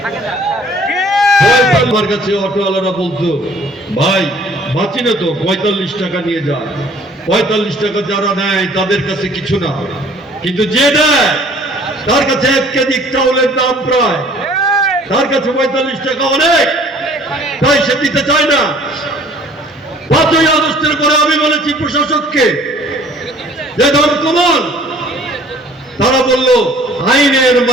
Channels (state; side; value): normal; both; correlation 0.54